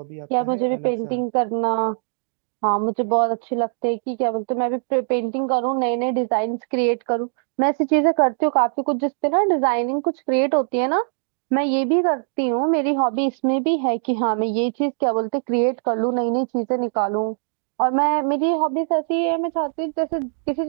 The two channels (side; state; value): left; silent; digital silence